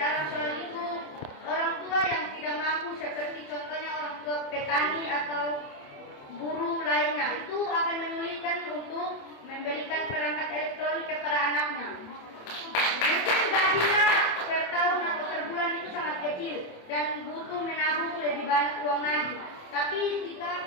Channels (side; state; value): right; late; 27 ms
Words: soal itu, orang tua yang tidak mampu seperti contohnya orang tua petani atau guru lainnya itu akan menyulitkan untuk membelikan perangkat elektronik kepada anaknya. Mungkin gajinya per tahun atau per bulan itu sangat kecil dan butuh menabung lebih banyak uang lagi. Tapi jika